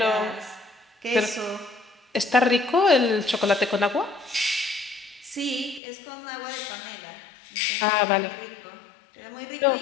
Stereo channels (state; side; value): drops out; right; at 5.8 s